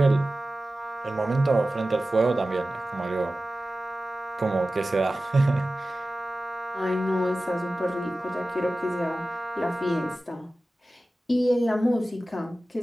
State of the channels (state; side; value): normal; both; correlation 0.96